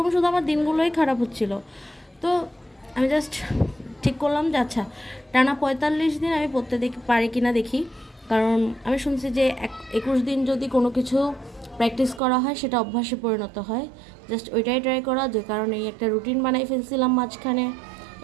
শুধু আমার দিনগুলোই খারাপ হচ্ছিল। তো আমি জাস্ট ঠিক করলাম যে আচ্ছা, টানা 45 দিন আমি পড়তে পারি কি না দেখি। কারণ আমি শুনছি যে 21 দিন যদি কোনো কিছু প্র্যাকটিস করা হয় সেটা অভ্যাসে পরিণত হয়। জাস্ট ওইটাই ট্রাই করা, যে কারণে একটা রুটিন বানাই ফেলছিলাম মাঝখানে।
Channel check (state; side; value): drops out; left; at 12.2 s